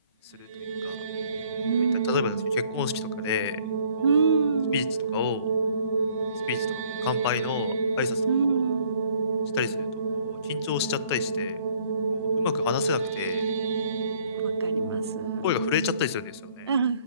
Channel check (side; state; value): both; inverted; correlation -0.61